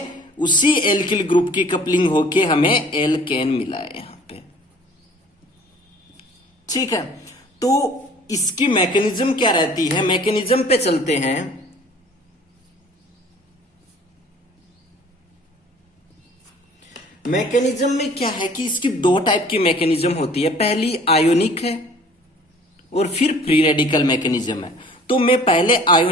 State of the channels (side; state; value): both; normal; correlation 0.51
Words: उसी एल्किल ग्रुप की कपलिंग होके हमें एल्केन मिला है यहां पे, ठीक है। तो इसकी मैकेनिज्म क्या रहती है, मैकेनिज्म पे चलते हैं। मैकेनिज्म में क्या है कि इसकी 2 टाइप की मैकेनिज्म होती है। पहली आयोनिक है और फिर फ्री रेडिकल मैकेनिज्म है। तो मैं पहले